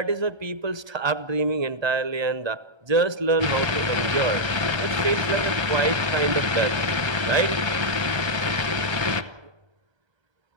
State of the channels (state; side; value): late; left; 1.3 ms